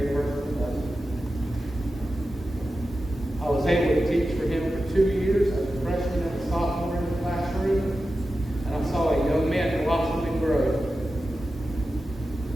personal level. I was able to teach for him for 2 years as a freshman and a sophomore in the classroom, and I saw a young man blossom and grow.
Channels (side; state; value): both; normal; correlation 0.92